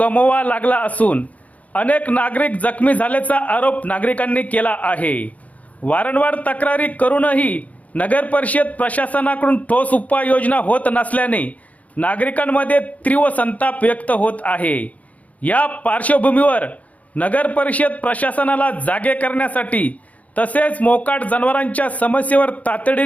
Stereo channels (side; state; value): right; late; 0.071 ms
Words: लागला असून अनेक नागरिक जखमी झाल्याचा आरोप नागरिकांनी केला आहे. वारंवार तक्रारी करूनही नगर परिषद प्रशासनाकडून ठोस उपाययोजना होत नसल्याने नागरिकांमध्ये तीव्र संताप व्यक्त होत आहे. या पार्श्वभूमीवर नगर परिषद प्रशासनाला जागे करण्यासाठी तसेच मोकाट जनावरांच्या समस्येवर